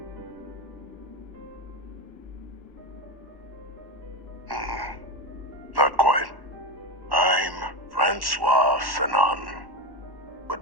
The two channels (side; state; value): left; late; 1.1 ms